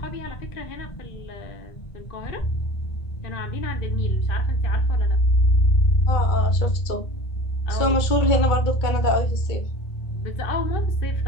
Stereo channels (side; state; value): right; late; 2.2 ms